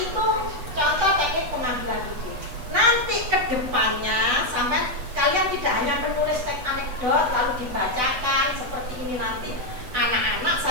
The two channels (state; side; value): late; left; 8.0 ms